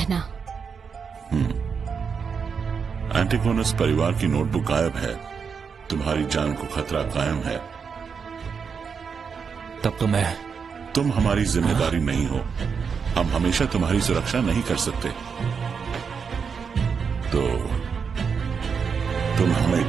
एंटीगोनस परिवार की नोटबुक गायब है। तुम्हारी जान को खतरा कायम है। तब तो तुम हमारी जिम्मेदारी नहीं हो। हम हमेशा तुम्हारी सुरक्षा नहीं कर सकते। तो तुम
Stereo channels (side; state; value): left; quieter; 6.0 dB